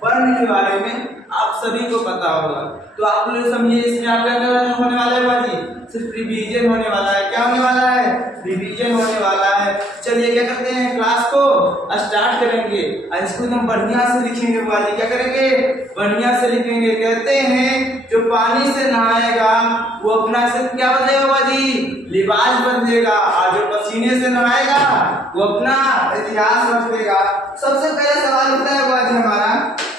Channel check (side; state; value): both; normal; correlation 0.65